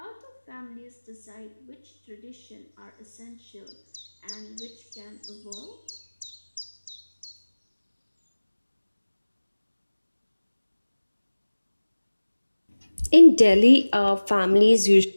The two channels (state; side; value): inverted; both; correlation -1.00